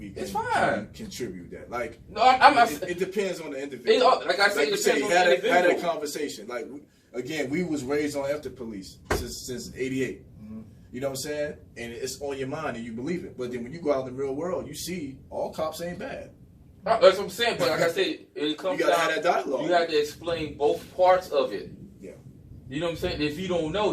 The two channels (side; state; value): both; identical; correlation 1.00